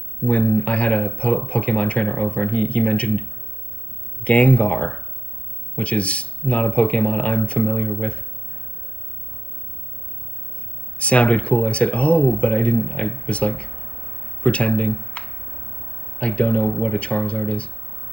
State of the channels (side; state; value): right; late; 0.062 ms